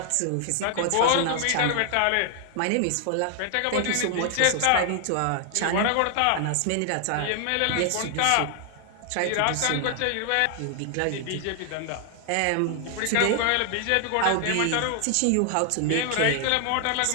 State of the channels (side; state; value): both; different; correlation 0.00